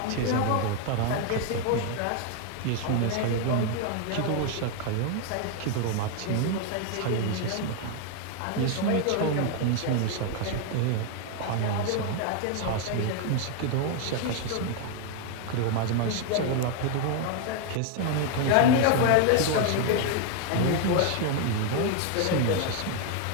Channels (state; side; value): different; both; correlation 0.00